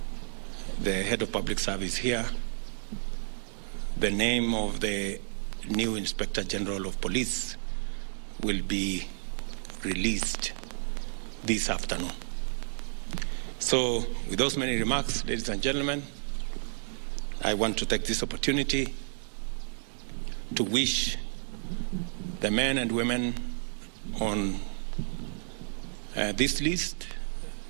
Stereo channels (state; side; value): silent; left; digital silence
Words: head of public service here, the name of the new Inspector General of Police will be released this afternoon. So, with those many remarks, ladies and gentlemen, I want to take this opportunity to wish the men and women on this list,